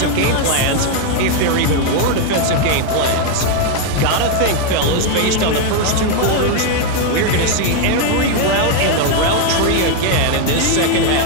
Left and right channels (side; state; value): both; different; correlation 0.01